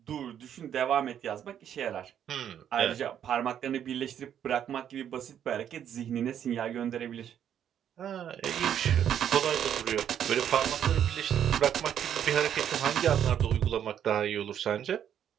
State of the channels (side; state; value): left; quieter; 9.5 dB